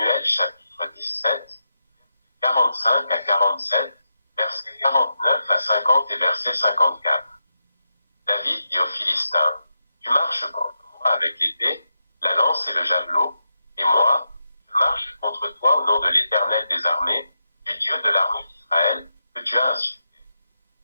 chapitre 17, 45 à 47, versets 49 à 50 et verset 54. David dit aux Philistins, « Tu marches contre moi avec l'épée, la lance et le javelot, et moi, je marche contre toi au nom de l'Éternel des armées, du Dieu de l'armée d'Israël, que tu as insulté.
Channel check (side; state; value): both; inverted; correlation -0.86